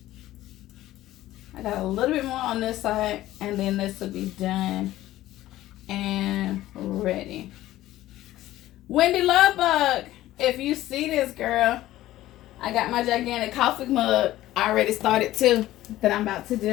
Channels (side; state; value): right; quieter; 15.1 dB